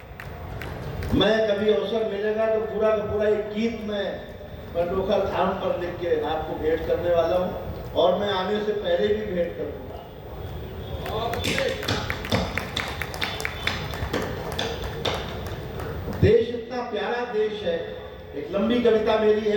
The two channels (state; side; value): identical; both; correlation 1.00